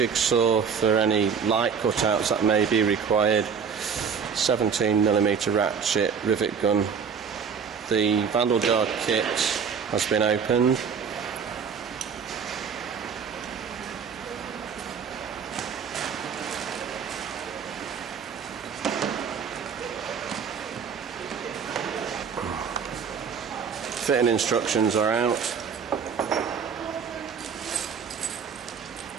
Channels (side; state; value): left; quieter; 6.5 dB